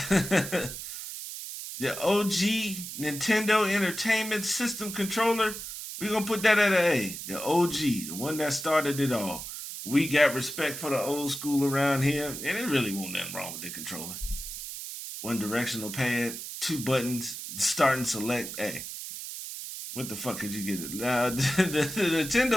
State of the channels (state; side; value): noise; right; hiss, 8 dB below the sound